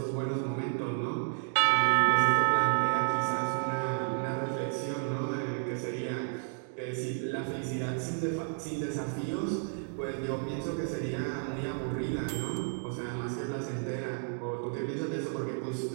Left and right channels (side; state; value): left; silent; 57 dB below the other